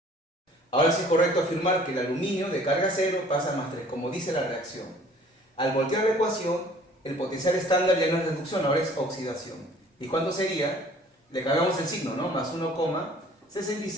Ahora sí es correcto afirmar que el aluminio de carga 0 pasa a +3, como dice la reacción. Al voltear la ecuación, el potencial estándar ya no es reducción, ahora es oxidación. ¿Y cuánto sería? Le cambiamos el signo, ¿no? Más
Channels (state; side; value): normal; both; correlation 0.53